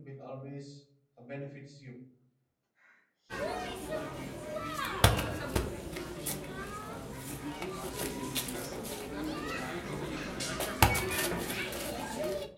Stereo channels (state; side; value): identical; both; correlation 1.00